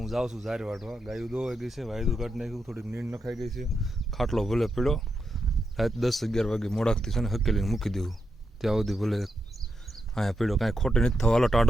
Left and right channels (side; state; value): both; normal; correlation 0.85